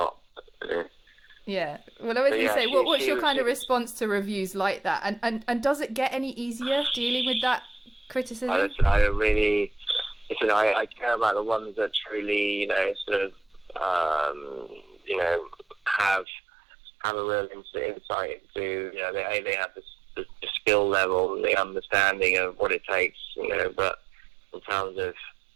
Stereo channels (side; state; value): left; drops out; at 16.2 s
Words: Yeah. Well, I was going to say, what's your kind of response to reviews like that? And does it get any easier dealing with that criticism? I care about the ones that truly, sort of, have a real insight into, they have the skill level and the understanding of what it takes, but in terms of